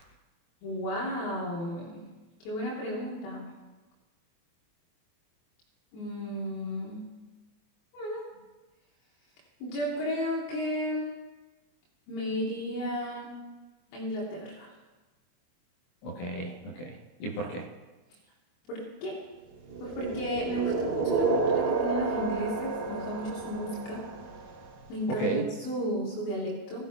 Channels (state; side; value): late; right; 24 ms